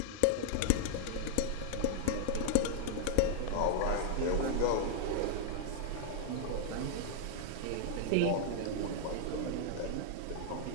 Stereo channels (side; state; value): both; different; correlation -0.02